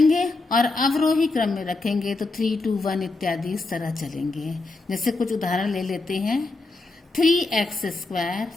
और अवरोही क्रम में रखेंगे तो 3, 2, 1 इत्यादि इस तरह चलेंगे। जैसे कुछ उदाहरण ले लेते हैं।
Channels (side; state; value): right; quieter; 3.4 dB